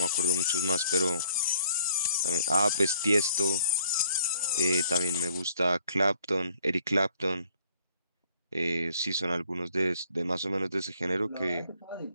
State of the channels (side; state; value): both; inverted; correlation -0.63